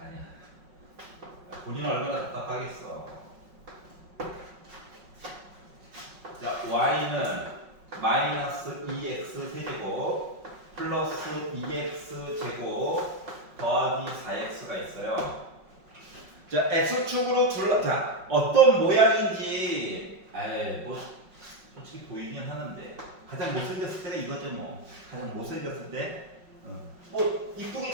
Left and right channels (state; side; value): late; left; 5.4 ms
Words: 본인은 얼마나 답답하겠어. 자, y는 마이너스 2x 세제곱 플러스 2x 제곱 더하기 4x가 있어요. 자, x축으로 자, 어떤 모양인지 뭐 솔직히 보이긴 하는데 가장 못생겼을 때가 이거죠 뭐. 가장 못생겼을 때 뭐 이쁘게